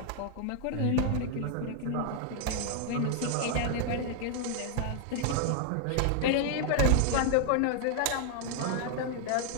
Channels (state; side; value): different; both; correlation 0.00